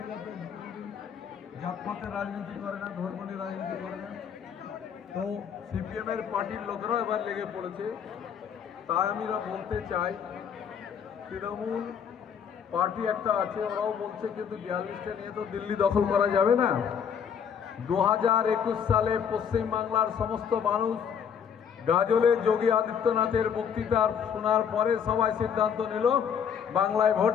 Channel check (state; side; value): quieter; right; 7.6 dB